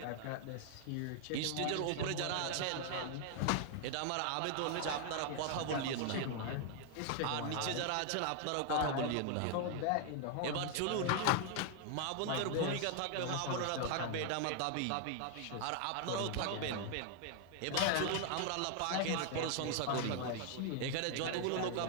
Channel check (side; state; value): both; different; correlation 0.00